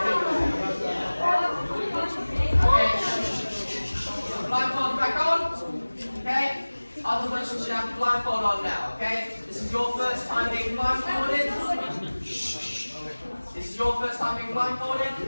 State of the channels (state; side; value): inverted; both; correlation -1.00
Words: Blindfold back on, okay? Other person should have the blindfold on now, okay? This is your first time being blindfolded. This is your first time being blindfolded.